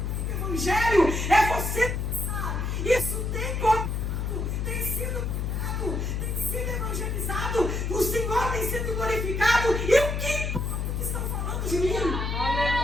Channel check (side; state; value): left; noise; hum, 1 dB below the sound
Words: o Evangelho? É você pensar, isso tem contado, tem sido pregado, tem sido evangelizado, o Senhor tem sido glorificado, e o que importa que estão falando de mim?